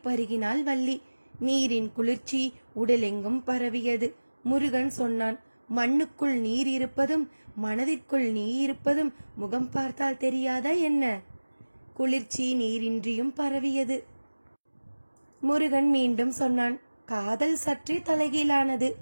பருகினாள் வள்ளி. நீரின் குளிர்ச்சி உடலெங்கும் பரவியது. முருகன் சொன்னான், மண்ணுக்குள் நீர் இருப்பதும் மனதிற்குள் நீர் இருப்பதும் முகம் பார்த்தால் தெரியாதா என்ன? குளிர்ச்சி நீரின்றியும் பரவியது. முருகன் மீண்டும் சொன்னான், காதல் சற்றே தலைகீழானது.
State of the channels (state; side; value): inverted; both; correlation -1.00